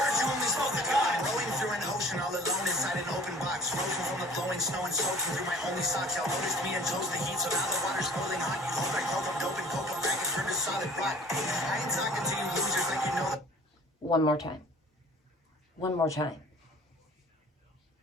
Snow and soaking through my only socks. Y'all noticed me and chose the heat, so now the water's boiling hot. You hold like coke, I'm dope and coke, I'm back and turned to solid rock. I ain't talking to you losers like you know that. One more time. One more time.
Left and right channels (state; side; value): normal; both; correlation 0.48